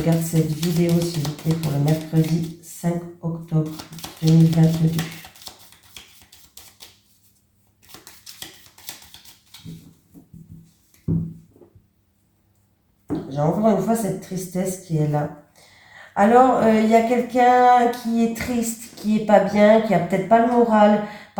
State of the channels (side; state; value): both; identical; correlation 1.00